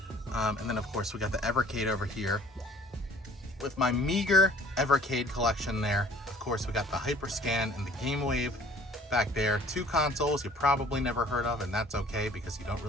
And then of course we got the Evercade over here with my meager Evercade collection there. Of course we got the Hyperscan and the Game Wave back there. Two consoles you probably never heard of, and that's okay because you don't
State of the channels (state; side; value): normal; both; correlation 0.53